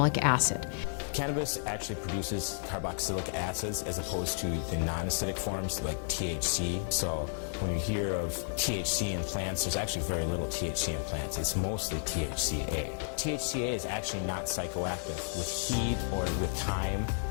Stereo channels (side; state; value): right; silent; digital silence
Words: acid. Cannabis actually produces carboxylic acids as opposed to the non-acidic forms like THC. So when you hear of THC in plants, there's actually very little THC in plants. It's mostly THCA. THCA is actually not psychoactive. With heat or with time,